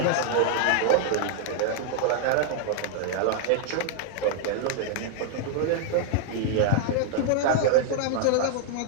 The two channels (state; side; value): different; both; correlation 0.00